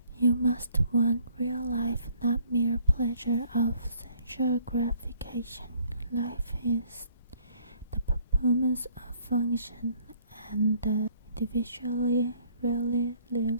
You must want real life, not mere pleasure of sensual gratification. Life is the performance of function, and the individual really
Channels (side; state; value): both; inverted; correlation -0.61